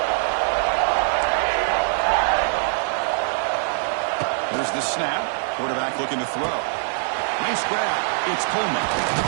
There's the snap. Quarterback looking to throw. Nice grab. It's Coleman.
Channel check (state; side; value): silent; left; 63 dB below the other